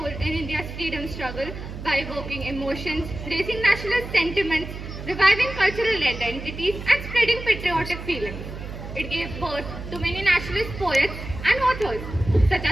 in India's freedom struggle by evoking emotions, raising nationalist sentiments, reviving cultural identities, and spreading patriotic feelings. It gave birth to many nationalist poets and authors such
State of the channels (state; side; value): noise; right; hum, 9 dB below the sound